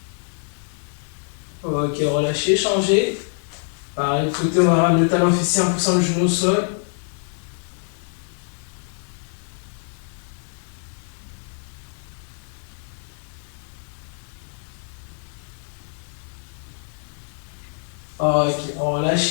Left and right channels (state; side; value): silent; right; 59 dB below the other